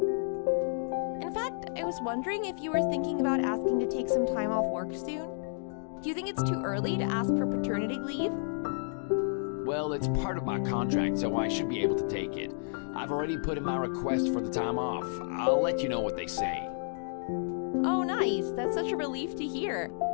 In fact, I was wondering if you were thinking about asking to take some time off work soon. Do you think it's too early to ask for paternity leave? Well, it's part of my contract, so I should be able to take it. I've already put in my request for the time off. I'll let you know what they say. Oh, nice. That's such a relief to hear.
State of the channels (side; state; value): right; silent; digital silence